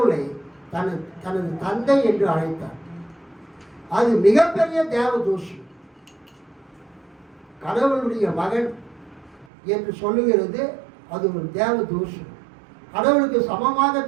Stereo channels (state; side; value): drops out; left; at 9.5 s